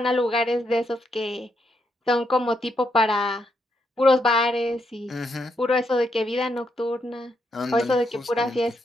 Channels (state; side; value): normal; both; correlation 0.79